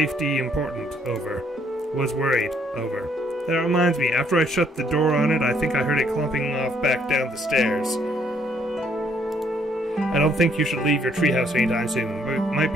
important. Over. Was worried. Over. That reminds me, after I shut the door on it, I think I heard it clumping off back down the stairs. I don't think you should leave your treehouse anytime soon. It might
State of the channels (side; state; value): both; normal; correlation 0.68